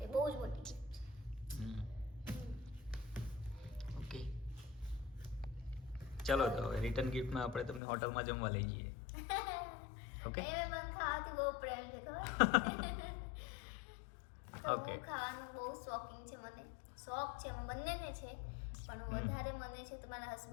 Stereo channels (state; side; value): drops out; right; at 7.8 s